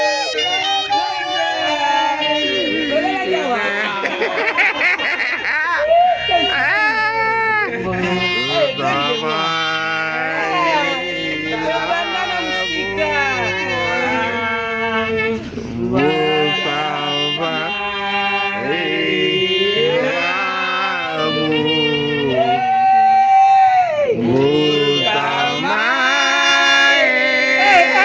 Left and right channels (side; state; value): both; identical; correlation 1.00